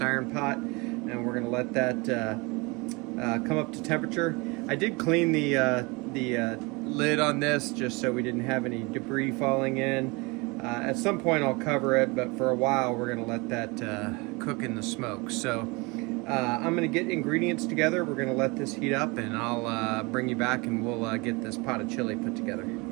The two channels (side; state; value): left; quieter; 26.8 dB